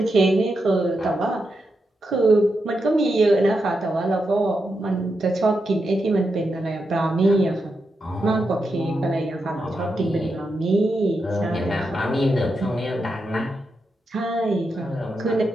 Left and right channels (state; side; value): normal; both; correlation 0.86